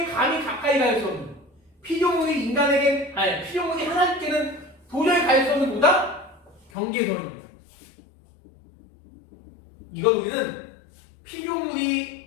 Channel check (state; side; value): drops out; right; at 6.7 s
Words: 감히 가까이 갈 수 없는 피조물이 하나님께는 도저히 갈 수 없는 뭐다? 경계선입니다. 이걸 우리는